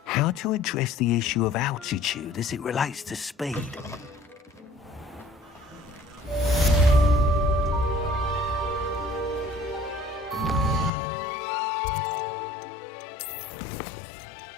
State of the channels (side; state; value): right; drops out; at 10.9 s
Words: How to address the issue of altitude as it relates to speed?